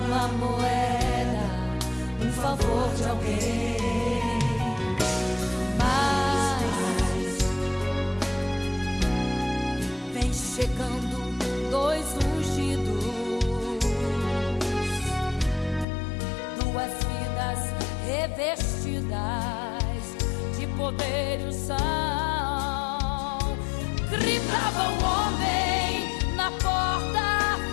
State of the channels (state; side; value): drops out; right; at 15.9 s